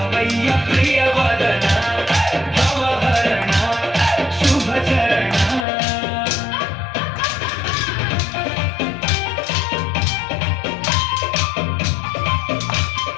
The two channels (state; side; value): drops out; right; at 5.7 s